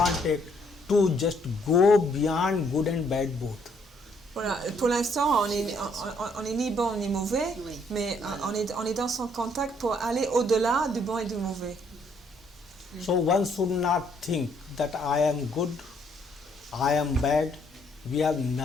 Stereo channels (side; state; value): both; normal; correlation 0.68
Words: to just go beyond good and bad both. Voilà, pour l'instant, on est ni bon ni mauvais, Oui. mais on est dans son contact pour aller au-delà du bon et du mauvais. So one should not think that I am good, I am bad. We have